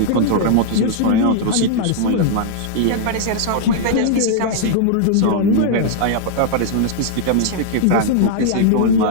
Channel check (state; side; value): different; both; correlation -0.01